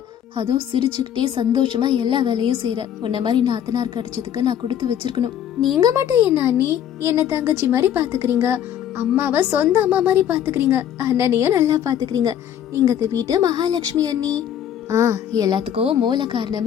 அதுவும் சிரிச்சுக்கிட்டே சந்தோஷமா எல்லா வேலையும் செய்யற. உன்ன மாதிரி நாத்தனார் கிடைச்சதுக்கு நான் கொடுத்து வச்சிருக்கணும். நீங்க மட்டும் என்ன அண்ணி என்ன தங்கச்சி மாதிரி பாத்துக்கிறீங்க, அம்மாவை சொந்த அம்மா மாதிரி பாத்துக்கிறீங்க, அண்ணனையும் நல்லா பாத்துக்கிறீங்க. நீங்க இந்த வீட்டு மகாலட்சுமி அண்ணி. எல்லாத்துக்கும் மூல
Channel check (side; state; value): right; quieter; 9.9 dB